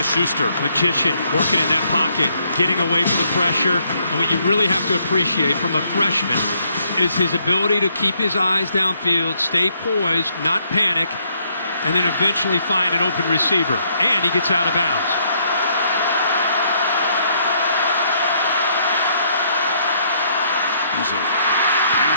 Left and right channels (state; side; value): inverted; both; correlation -0.70